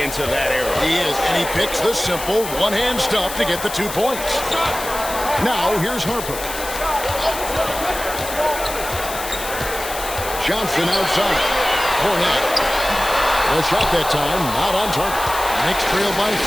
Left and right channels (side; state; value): left; noise; hiss, 9 dB below the sound